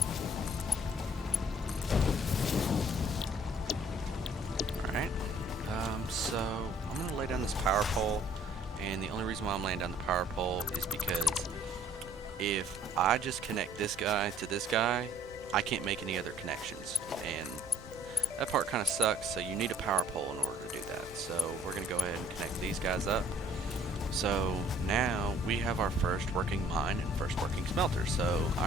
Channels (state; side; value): normal; both; correlation 0.58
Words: Alright, so I'm going to lay down this power pole, and the only reason why I'm laying down the power pole is because if I just connect this guy to this guy, I can't make any other connections, and that part kind of sucks, so you need a power pole in order to do that. So we're going to go ahead and connect these guys up. So now we have our first working mine and first working smelter. So